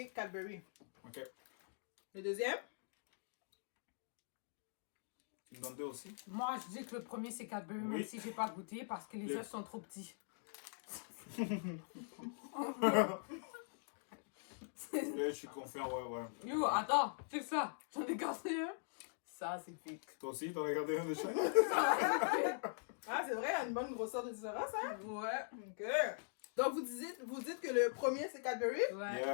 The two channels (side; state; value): right; silent; digital silence